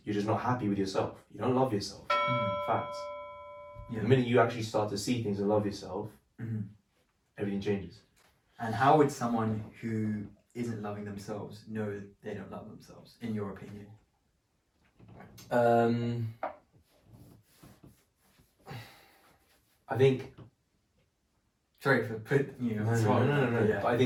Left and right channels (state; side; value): identical; both; correlation 1.00